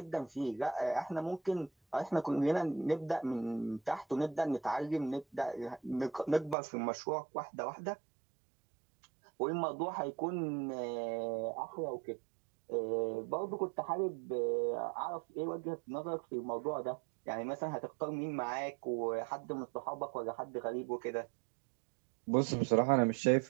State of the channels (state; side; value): drops out; left; at 6.6 s